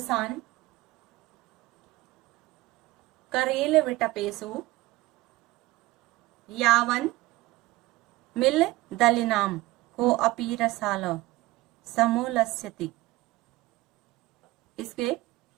करेल विटपेसु यावन मिल दलिनाम को अपी रसाल समूलस्यति। इसके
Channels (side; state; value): left; quieter; 18.8 dB